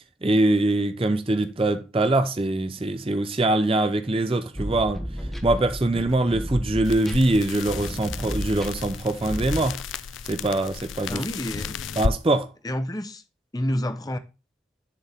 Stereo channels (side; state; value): both; normal; correlation 0.76